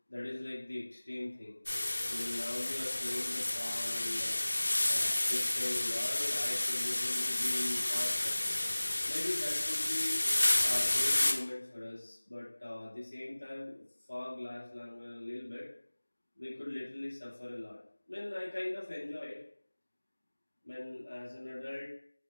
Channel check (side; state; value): both; inverted; correlation -1.00